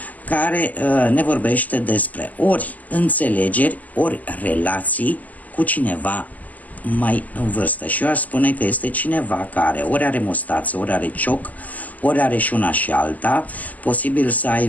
care ne vorbește despre ori înțelegeri, ori relații cu cineva mai în vârstă. Și eu aș spune că este cineva care ori are mustață, ori are cioc, ori are și una și alta, posibil să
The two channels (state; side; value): late; right; 0.078 ms